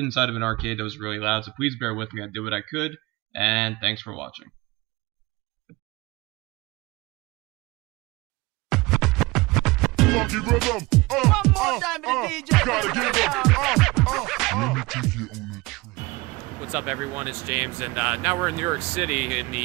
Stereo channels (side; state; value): left; quieter; 22.8 dB